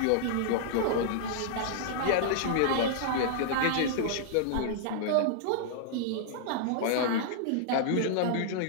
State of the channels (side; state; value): both; different; correlation -0.01